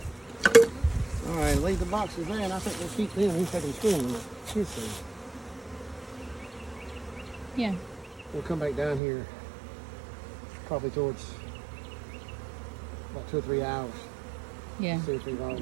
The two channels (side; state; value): left; drops out; at 9.0 s